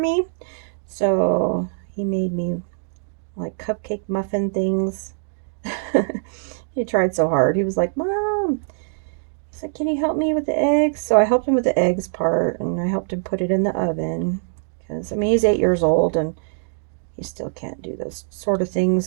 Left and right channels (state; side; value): silent; left; digital silence